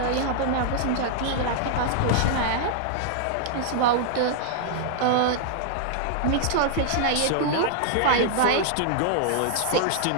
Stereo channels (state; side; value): different; both; correlation -0.01